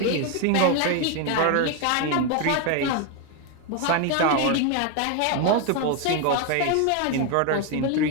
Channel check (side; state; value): both; different; correlation 0.01